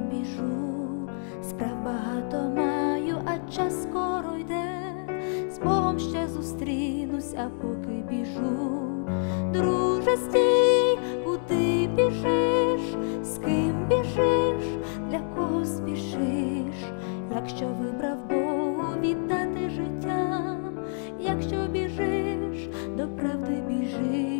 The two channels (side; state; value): right; silent; 58 dB below the other